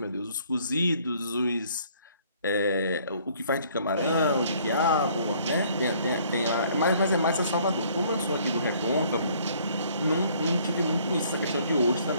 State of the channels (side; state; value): both; inverted; correlation -0.60